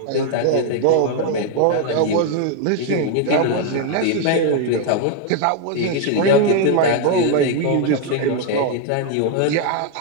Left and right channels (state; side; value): different; both; correlation 0.00